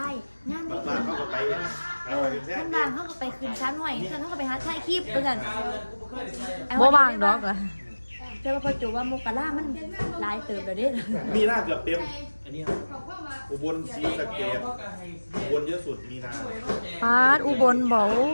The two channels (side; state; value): both; inverted; correlation -1.00